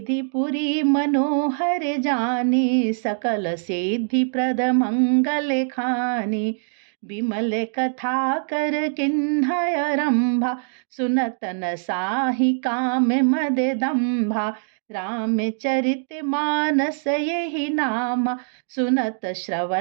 पुरी मनोहर जानी, सकल सिद्धि प्रद मंगल खानी। विमल कथा कर किन्हय रंभा, सुनत न साहि काम मद दंभा। रामचरित मानस यही नाम, सुनत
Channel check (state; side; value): silent; left; digital silence